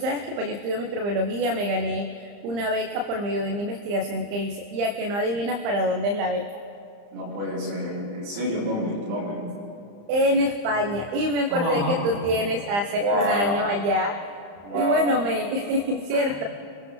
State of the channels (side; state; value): left; late; 35 ms